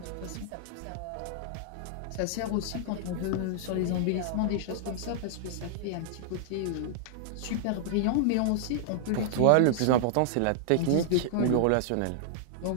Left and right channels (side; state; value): both; different; correlation -0.01